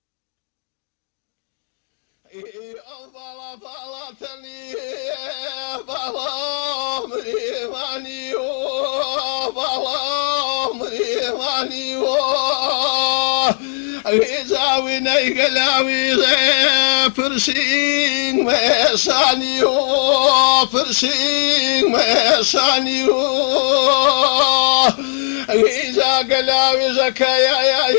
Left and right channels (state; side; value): silent; right; digital silence